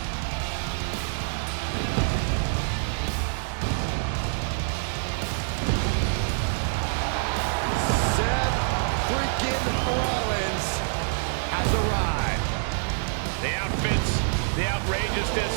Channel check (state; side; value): silent; left; digital silence